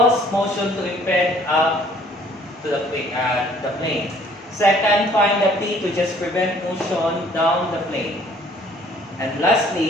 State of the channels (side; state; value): both; normal; correlation 0.58